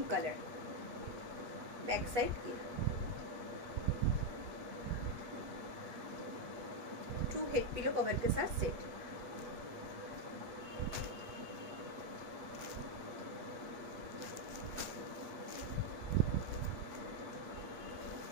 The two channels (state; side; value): late; left; 8.2 ms